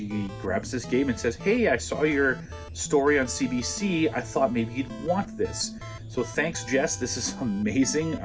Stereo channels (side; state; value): both; identical; correlation 1.00